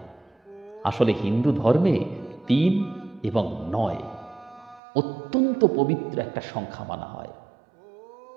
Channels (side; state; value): left; drops out; at 4.8 s